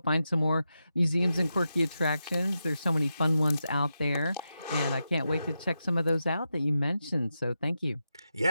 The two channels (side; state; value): both; inverted; correlation -0.88